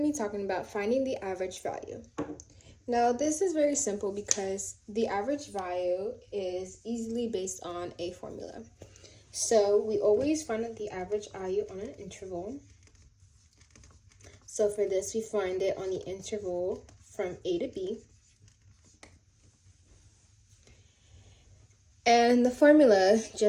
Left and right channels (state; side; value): identical; both; correlation 1.00